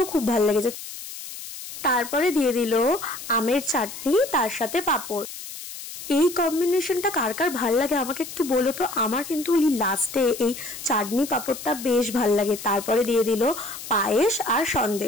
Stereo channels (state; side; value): noise; left; hiss, 11 dB below the sound